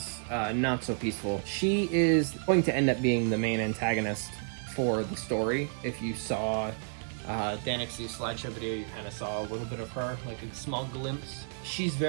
not so peaceful. She is going to end up being the main antagonist for the story. If you saw Danix's slideshow video, you kind of saw a little bit of her, like a small glimpse. She's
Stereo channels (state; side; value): silent; left; digital silence